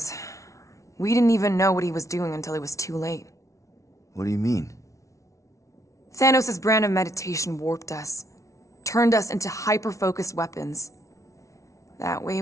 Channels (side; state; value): right; late; 0.15 ms